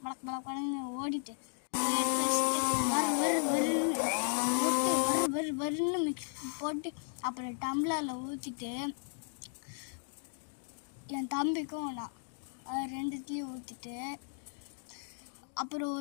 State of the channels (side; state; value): right; silent; 54 dB below the other